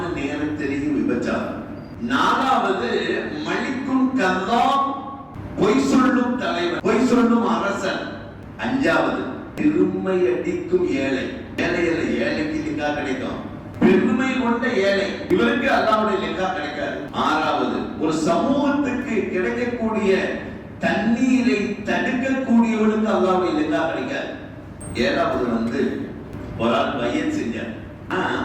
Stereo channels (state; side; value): identical; both; correlation 1.00